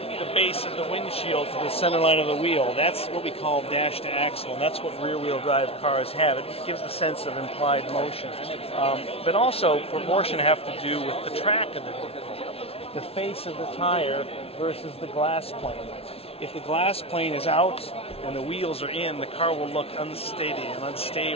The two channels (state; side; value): late; right; 0.28 ms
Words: The base of the windshield to the center line of the wheel, that's what we call dash to axle, and that's what rear-wheel drive cars have. It gives the sense of implied motion. But also, proportion have to do with the track of the vehicle. The face of the tire versus the glass plane. If the glass plane is out and the wheels are in, the car will look unsteady and